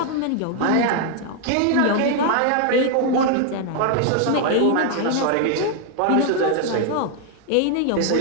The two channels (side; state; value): both; different; correlation 0.00